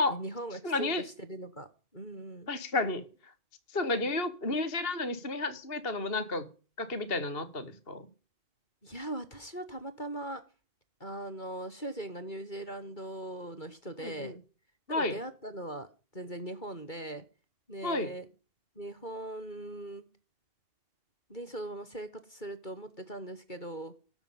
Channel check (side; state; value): right; late; 2.3 ms